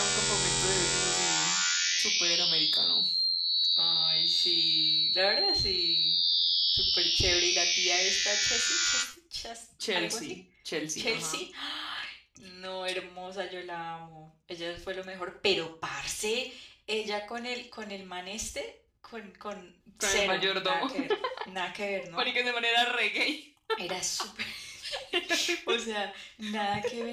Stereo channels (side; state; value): both; identical; correlation 1.00